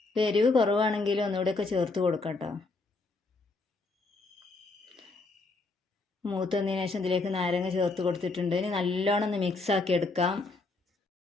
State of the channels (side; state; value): right; quieter; 3.6 dB